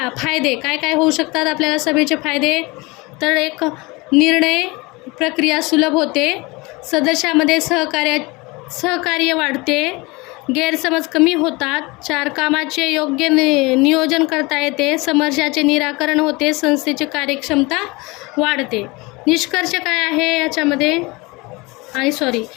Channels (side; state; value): right; quieter; 24.7 dB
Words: फायदे काय होऊ शकतात आपल्याला सभेचे फायदे? तर एक, निर्णय प्रक्रिया सुलभ होते. सदस्यामध्ये सहकार्य वाढते. गैरसमज कमी होतात. 4, कामाचे योग्य नियोजन करता येते. समस्याचे निराकरण होते. संस्थेची कार्यक्षमता वाढते. निष्कर्ष काय आहे याच्यामध्ये?